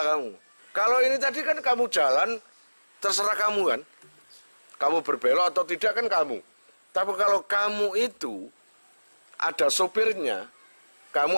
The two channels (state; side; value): inverted; both; correlation -1.00